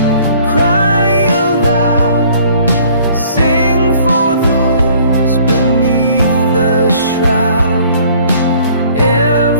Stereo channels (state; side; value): inverted; both; correlation -0.56